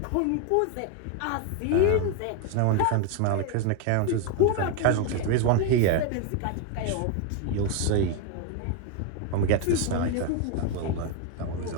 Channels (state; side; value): different; both; correlation 0.01